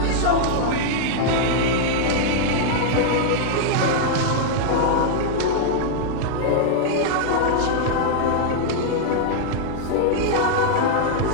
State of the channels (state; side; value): different; both; correlation -0.01